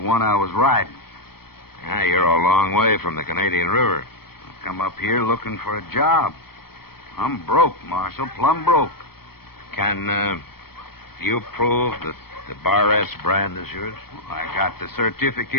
I was riding. Yeah, you're a long way from the Canadian River. I come up here looking for a job. I'm broke, Marshal, plumb broke. Can you prove that the Bar S brand is yours? Well, I got the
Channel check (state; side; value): late; right; 0.95 ms